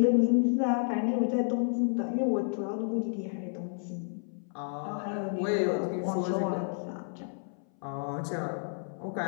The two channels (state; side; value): silent; right; 57 dB below the other